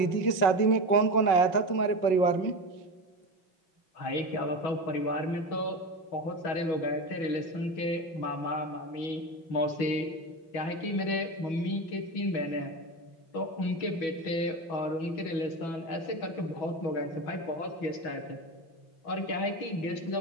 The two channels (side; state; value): right; late; 6.1 ms